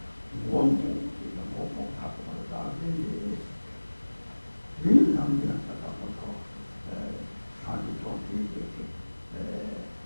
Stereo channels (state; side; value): inverted; both; correlation -1.00